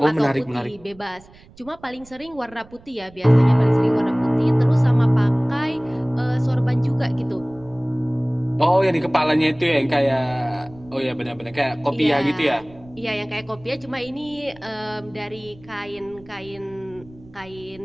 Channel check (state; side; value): noise; right; rumble, 24 dB below the sound